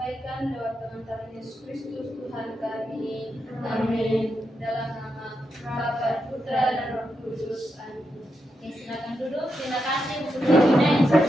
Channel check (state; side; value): normal; both; correlation 0.85